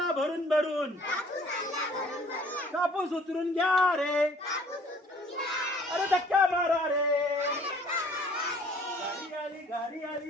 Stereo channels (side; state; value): both; normal; correlation 0.55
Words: भरून भरून। कापूस उतरून घ्या रे। अरे धक्का मारा रे। गाडी